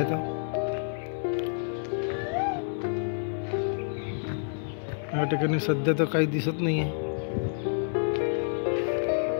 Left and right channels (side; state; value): right; silent; 59 dB below the other